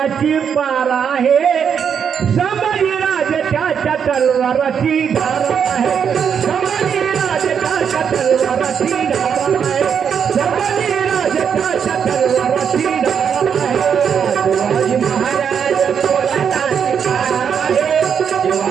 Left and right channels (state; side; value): quieter; left; 7.4 dB